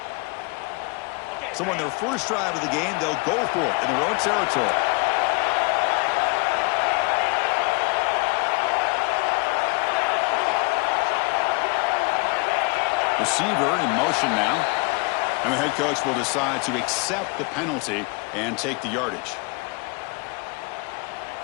So on their first drive of the game, they'll go for it in their own territory. Receiver in motion now. And the head coach will decide to accept the penalty and take the yardage.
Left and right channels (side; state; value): right; quieter; 29.8 dB